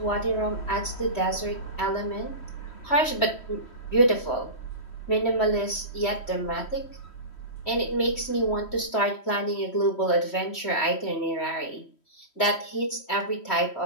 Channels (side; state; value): right; late; 3.1 ms